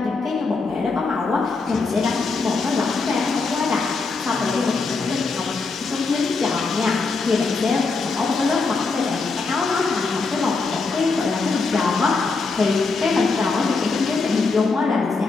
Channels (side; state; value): right; quieter; 4.1 dB